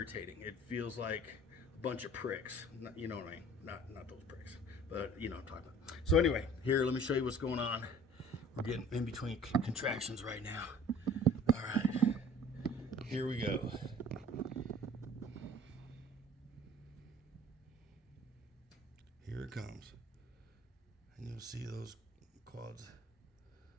It feels like a bunch of pricks. You know what I mean? Not those pricks, but you know what I'm talking about. So anyway, here, let me show you what's going on. We're getting in between contractions right now. All right, here we go. Here it comes. And you'll see those quads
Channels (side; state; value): both; normal; correlation 0.49